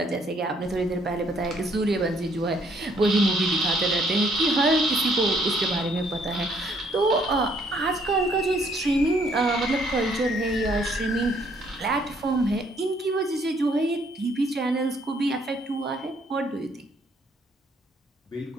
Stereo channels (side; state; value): both; normal; correlation 0.66